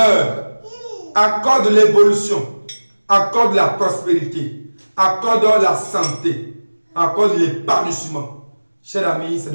accorde l'évolution, accorde la prospérité, accorde la santé, accorde l'épanouissement. Chers amis, c'est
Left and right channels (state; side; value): inverted; both; correlation -1.00